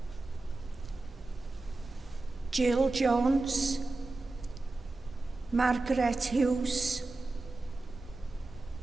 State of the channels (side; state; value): left; quieter; 3.2 dB